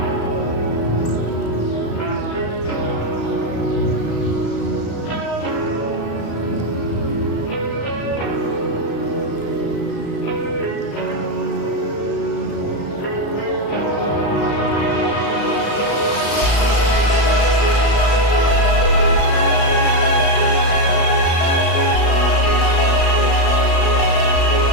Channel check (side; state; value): right; late; 35 ms